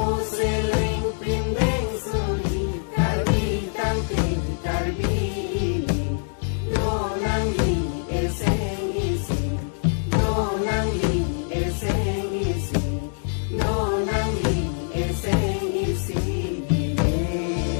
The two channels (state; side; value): silent; right; 62 dB below the other